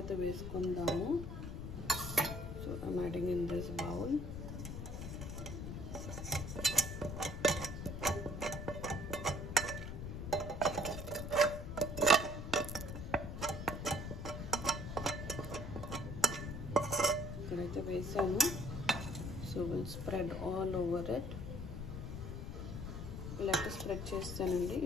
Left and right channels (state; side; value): noise; left; rumble, 6 dB below the sound